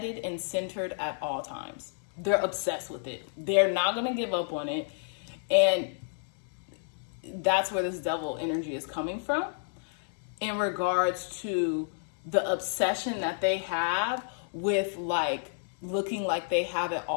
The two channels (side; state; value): right; silent; digital silence